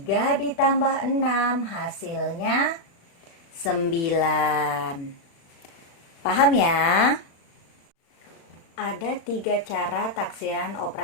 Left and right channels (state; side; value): late; right; 36 ms